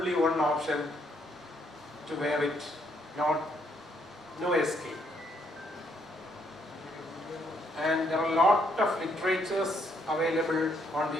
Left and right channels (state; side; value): normal; both; correlation 0.71